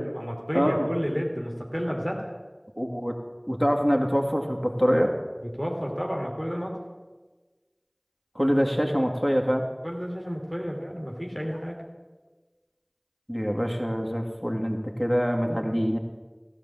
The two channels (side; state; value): both; identical; correlation 1.00